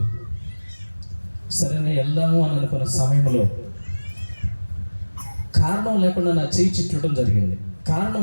సరేనే వెళ్దాము అని అనుకున్న సమయంలో కారణం లేకుండా నా చేయి చిట్టడం జరిగింది.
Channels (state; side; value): inverted; both; correlation -1.00